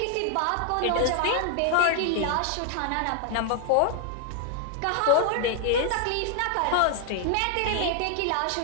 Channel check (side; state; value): both; different; correlation 0.00